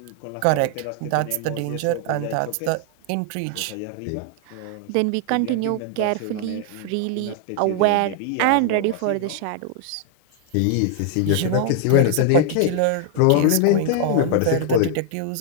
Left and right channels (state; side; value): different; both; correlation 0.00